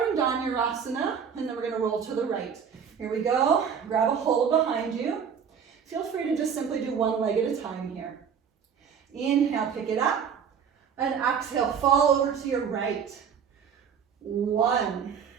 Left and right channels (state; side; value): quieter; left; 7.2 dB